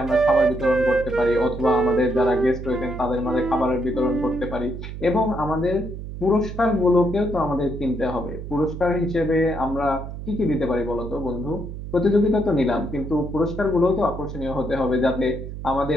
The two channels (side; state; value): right; noise; hum, 9 dB below the sound